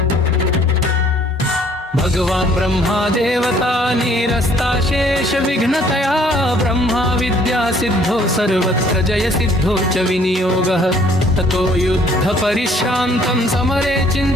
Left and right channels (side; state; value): both; normal; correlation 0.60